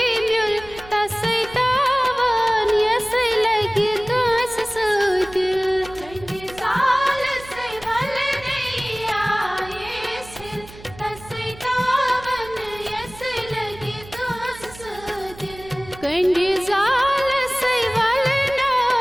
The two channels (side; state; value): right; noise; hum, 19 dB below the sound